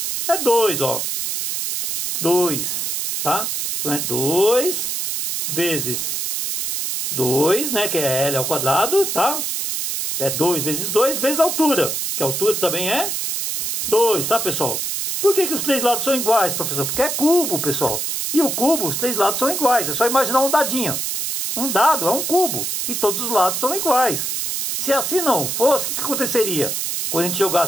É 2, ó. 2, tá? Então é 2 vezes 2, né? Que é L ao quadrado, tá? É 2 vezes a altura. Que a altura também é 2, tá, pessoal? Por que os 3 lados são iguais, professor? Porque é cubo, pessoal. E o cubo, os 3 lados são iguais. É só imaginar um dadinho. Um dado é um cubo. E todos os lados são iguais. Se assim não fosse, o que aconteceria? Quando a gente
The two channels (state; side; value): noise; right; hiss, 2 dB below the sound